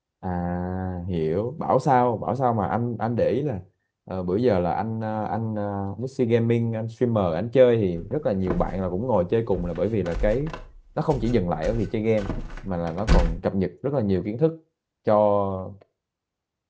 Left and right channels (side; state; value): both; identical; correlation 1.00